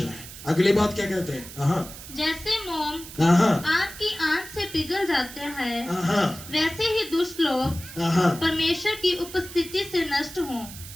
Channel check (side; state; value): right; noise; hiss, 14 dB below the sound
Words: है। अगली बात क्या कहते हैं? जैसे मोम आग की आंच से पिघल जाते हैं वैसे ही दुष्ट लोग परमेश्वर की उपस्थिति से नष्ट हों।